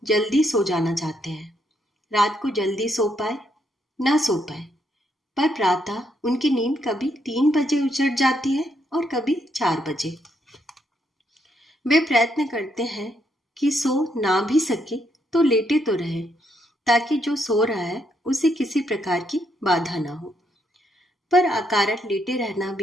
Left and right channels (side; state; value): both; normal; correlation 0.76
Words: जल्दी सो जाना चाहते हैं। रात को जल्दी सो पाए ना सो पाए, पर प्रातः उनकी नींद कभी 3 बजे उचट जाती है और कभी 4 बजे। वे प्रयत्न करते हैं कि सो ना भी सके तो लेटे तो रहे, ताकि जो सो रहा है उसे किसी प्रकार की बाधा ना हो। पर अकारण लेटे रहना